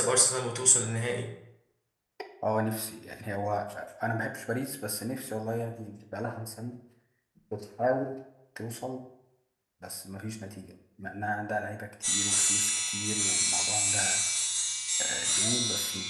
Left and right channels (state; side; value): identical; both; correlation 1.00